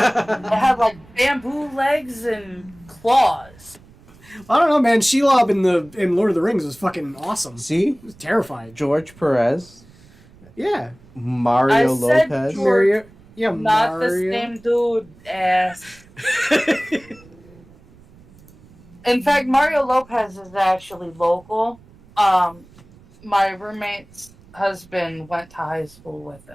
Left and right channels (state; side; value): noise; right; rumble, 25 dB below the sound